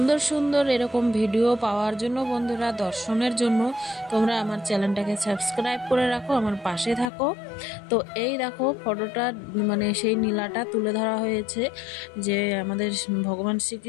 সুন্দর এরকম ভিডিও পাওয়ার জন্য বন্ধুরা, দর্শনের জন্য তোমরা আমার চ্যানেলটাকে সাবস্ক্রাইব করে রাখো, আমার পাশে থাকো। তো এই দেখো ফটোটা, মানে সেই নীলাটা তুলে ধরা হয়েছে যে আমাদের ভগবান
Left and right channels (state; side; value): drops out; right; at 7.1 s